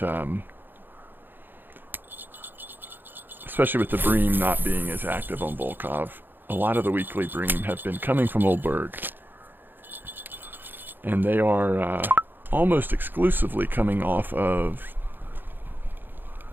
especially with the Bream not being as active on Volkov, a lot of the weekly Bream have been coming from Old Burg. And they are almost exclusively coming off of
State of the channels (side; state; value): left; late; 0.094 ms